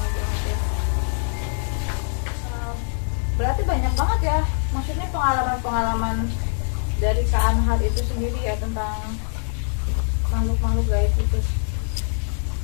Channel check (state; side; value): silent; right; 63 dB below the other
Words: banget ya. Berarti banyak banget ya, maksudnya pengalaman-pengalaman dari Kak Anhar itu sendiri ya tentang makhluk-makhluk gaib itu.